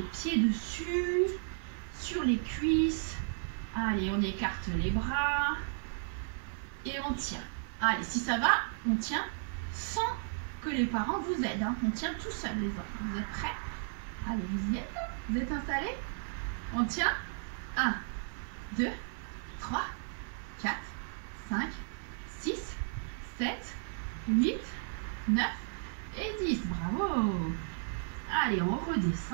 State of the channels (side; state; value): left; silent; 55 dB below the other